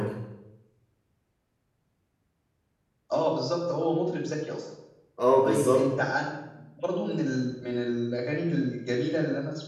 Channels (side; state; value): both; identical; correlation 1.00